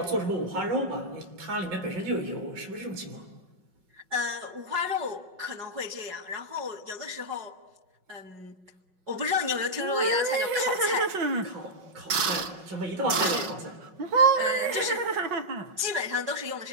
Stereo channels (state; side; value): late; left; 5.4 ms